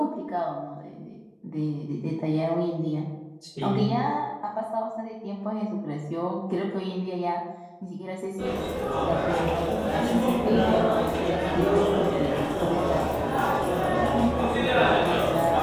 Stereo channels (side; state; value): both; identical; correlation 1.00